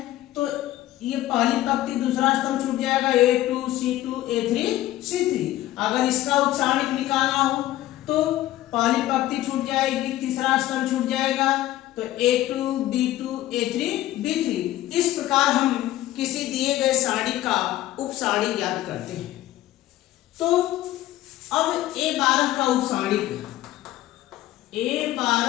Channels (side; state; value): right; quieter; 14.9 dB